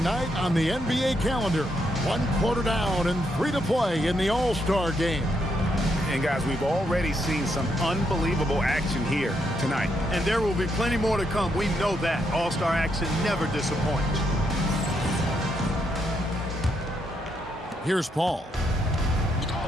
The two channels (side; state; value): both; normal; correlation 0.78